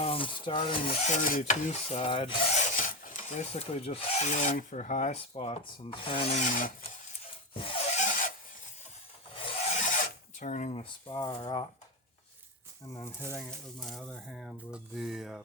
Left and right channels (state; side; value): normal; both; correlation 0.15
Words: I'm starting the 32 side, basically just feeling for high spots and turning the spar up, and then hitting it with my other hand with the